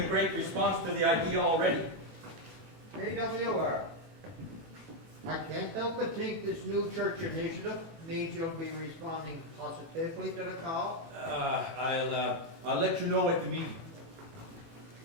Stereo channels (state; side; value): late; left; 18 ms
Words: great response to the idea already. AWR. I can't help but think this new church initiative means you'll be responding positively to the call. I'll let you know at the meeting.